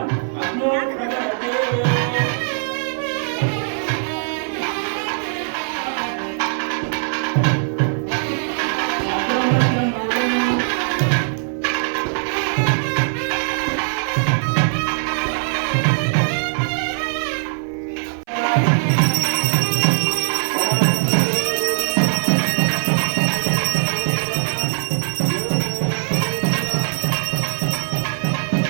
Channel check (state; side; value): silent; left; 59 dB below the other